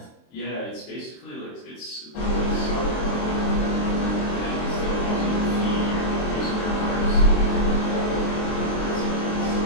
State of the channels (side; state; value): right; late; 23 ms